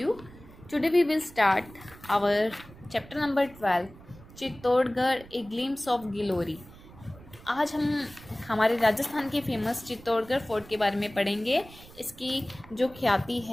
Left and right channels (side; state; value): right; noise; rumble, 20 dB below the sound